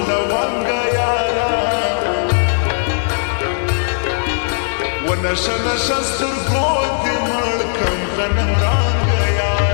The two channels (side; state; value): right; silent; digital silence